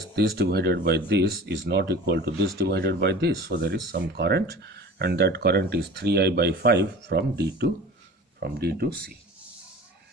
this divided by this is not equal to this divided by this. So there is some current, and that current is 3I by 5 from D to C.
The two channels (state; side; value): normal; both; correlation 0.39